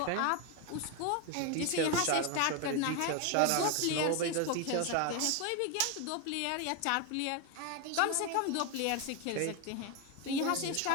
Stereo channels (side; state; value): both; different; correlation 0.02